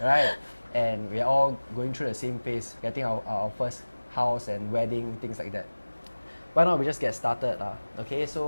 and we are all going through the same phase, getting our first house and wedding, things like that. Why not we just get started lah? Okay,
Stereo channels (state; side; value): inverted; both; correlation -1.00